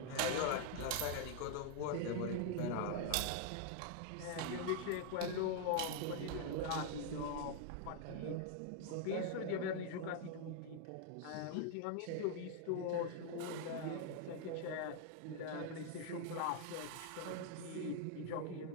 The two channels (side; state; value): both; different; correlation 0.00